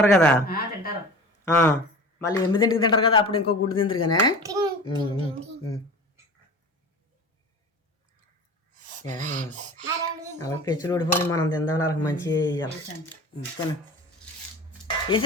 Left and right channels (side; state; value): both; normal; correlation 0.36